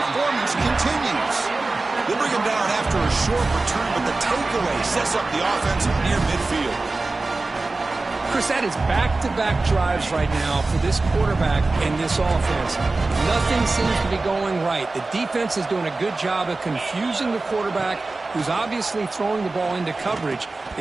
continues. They bring him down after a short return, but the takeaway sets up the offense near midfield. Chris, that is back-to-back drives right now for this quarterback and this offense. Nothing seems to be going right. The defense is doing a good job of confusing the quarterback, who's obviously throwing the ball into coverage.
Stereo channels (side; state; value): left; quieter; 3.4 dB